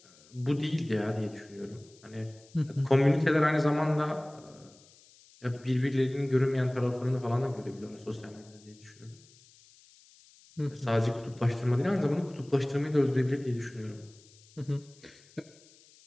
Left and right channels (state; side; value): noise; left; hiss, 26 dB below the sound